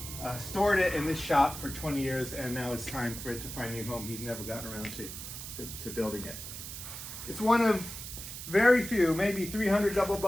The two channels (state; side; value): noise; right; hiss, 9 dB below the sound